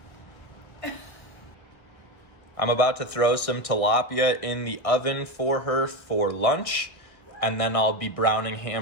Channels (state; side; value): late; right; 1.6 ms